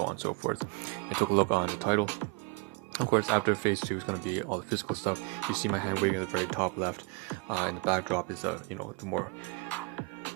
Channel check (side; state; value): left; quieter; 28.3 dB